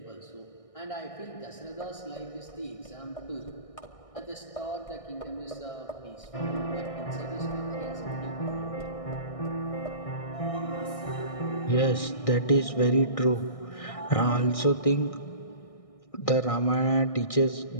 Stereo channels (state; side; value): late; right; 1.6 ms